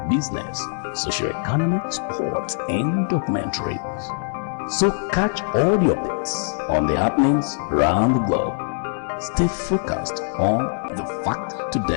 business, socio-economic, sports, and documentaries. So catch all the updates on the happenings around the globe. Stay focused on the fact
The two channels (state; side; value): silent; right; digital silence